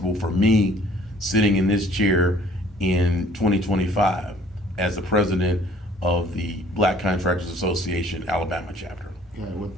for me sitting in this chair in 2025 as the president of the Black Contractors Association Alabama chapter. Yeah,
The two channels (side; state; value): both; normal; correlation 0.56